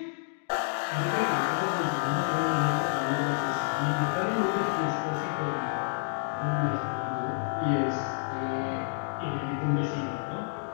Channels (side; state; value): right; silent; digital silence